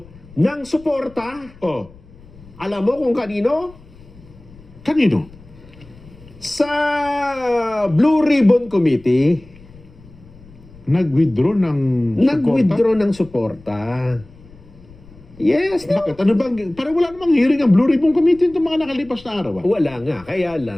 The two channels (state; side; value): noise; left; rumble, 23 dB below the sound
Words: ng suporta. Alam mo kung kanino? Kanino? Sa Blue Ribbon Committee. Nag-withdraw ng Nag-withdraw ng suporta. Yes. Bakit? Ano bang, parang wala namang hearing ang Blue Ribbon Committee itong mga nakalipas na araw. Wala nga. Kaya